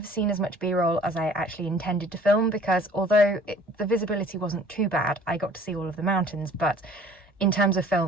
seen as much B-roll as I actually intended to film, because although the visibility wasn't too bad, I got to see all of the mountains, but in terms of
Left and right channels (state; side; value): normal; both; correlation 0.52